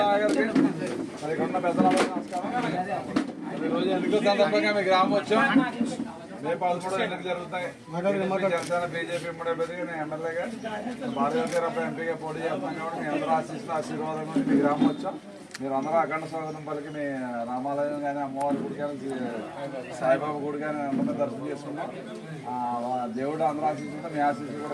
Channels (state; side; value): identical; both; correlation 1.00